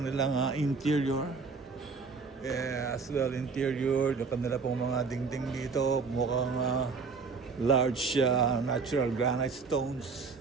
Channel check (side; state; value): left; quieter; 4.7 dB